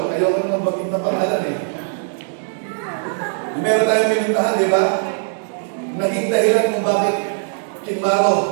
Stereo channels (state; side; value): silent; left; digital silence